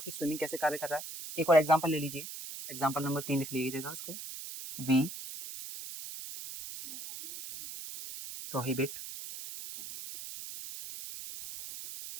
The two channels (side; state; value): right; noise; hiss, 10 dB below the sound